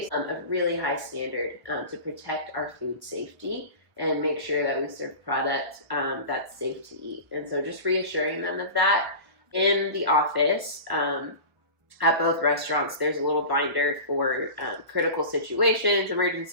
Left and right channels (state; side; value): late; left; 1.0 ms